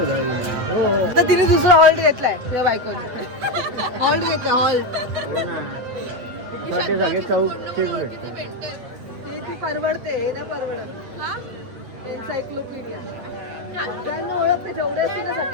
तिने दुसरा हॉल्ट घेतलाय तुझ्या बायकोने. हॉल्ट घेतला हॉल्ट. सगळे चौकशीच भेटते. ती परवडते हे नाही परवडत. एन्सायक्लोपीडिया सगळ्यांना ओळखते जेवढे असते ना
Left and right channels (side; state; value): left; late; 8.6 ms